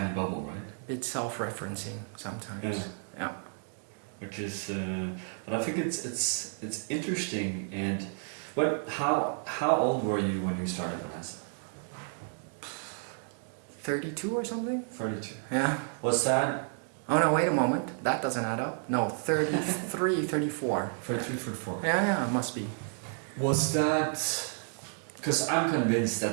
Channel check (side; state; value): left; silent; 57 dB below the other